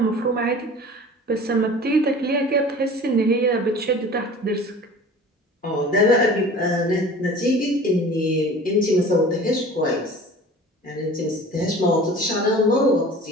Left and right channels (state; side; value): normal; both; correlation 0.42